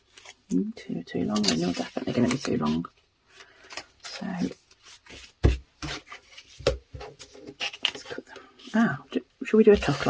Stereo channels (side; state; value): both; identical; correlation 1.00